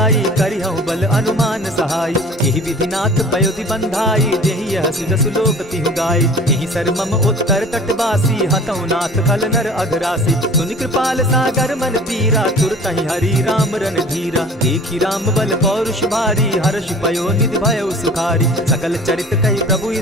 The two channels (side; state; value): both; normal; correlation 0.44